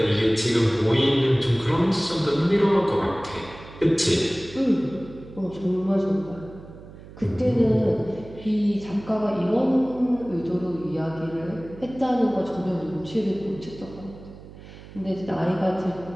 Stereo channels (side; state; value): right; noise; hum, 17 dB below the sound